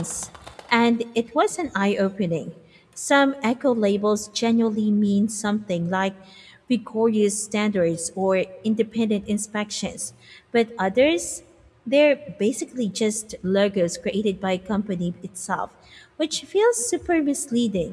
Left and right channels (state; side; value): identical; both; correlation 1.00